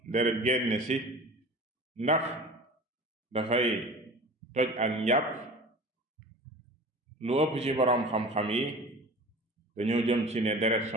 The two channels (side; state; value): both; normal; correlation 0.38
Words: deret génn ci, ndax dafay toj ak njàpp, lu ëpp ci boroom xam-xam yi dañoo jëm ci ne deret